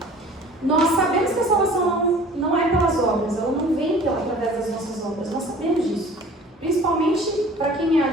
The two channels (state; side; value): normal; both; correlation 0.47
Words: Nós sabemos que a salvação não é pelas obras, ela não vem através das nossas obras, nós sabemos disso. Principalmente para quem é